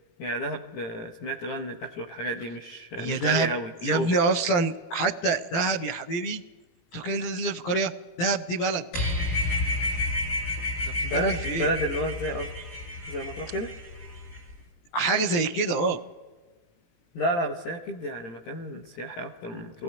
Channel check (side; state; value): right; late; 18 ms